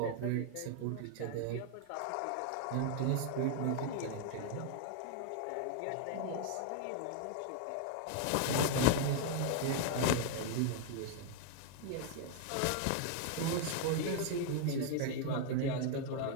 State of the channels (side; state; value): both; different; correlation 0.00